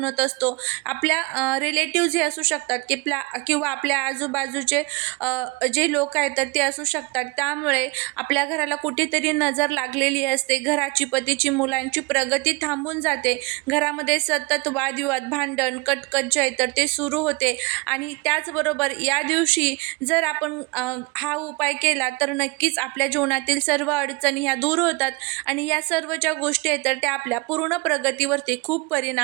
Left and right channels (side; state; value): left; quieter; 26.5 dB